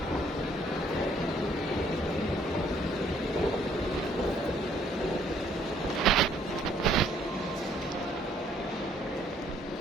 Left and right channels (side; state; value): both; normal; correlation 0.64